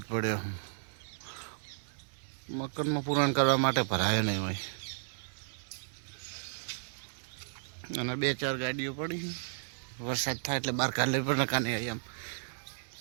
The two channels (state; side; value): silent; left; 55 dB below the other